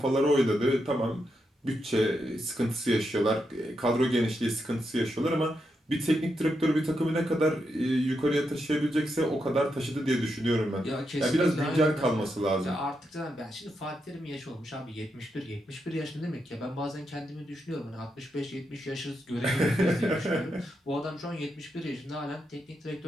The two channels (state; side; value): normal; both; correlation 0.83